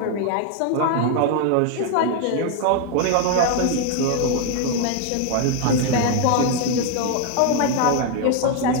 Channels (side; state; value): both; different; correlation 0.01